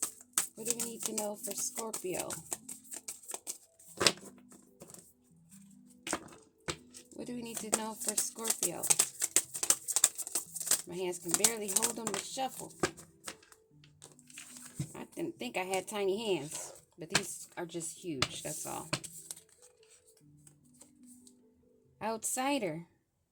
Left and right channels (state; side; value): identical; both; correlation 1.00